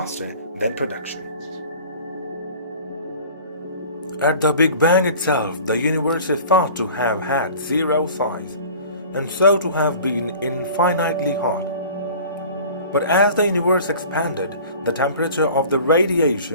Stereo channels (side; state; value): both; inverted; correlation -0.43